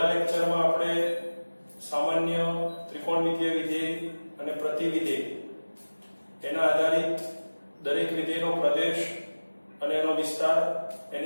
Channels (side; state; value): both; inverted; correlation -1.00